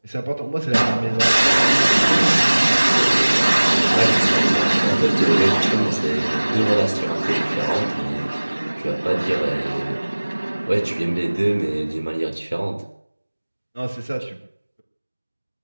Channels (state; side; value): inverted; both; correlation -1.00